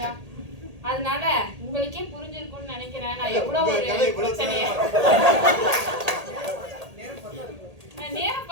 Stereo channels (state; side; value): late; left; 1.8 ms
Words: அதனால உங்களுக்கே புரிஞ்சிருக்கும்னு நினைக்கிறேன் நான் எவ்வளவு ஒரு பிரச்சனைய. நேரம்